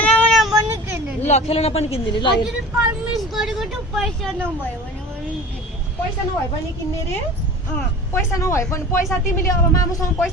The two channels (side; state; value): both; normal; correlation 0.39